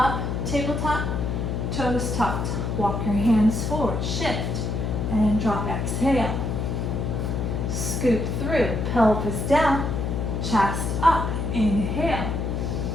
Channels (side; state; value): left; noise; hum, 1 dB below the sound